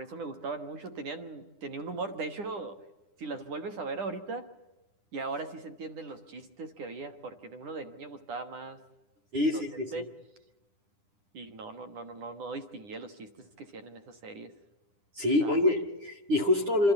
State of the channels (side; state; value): left; late; 9.9 ms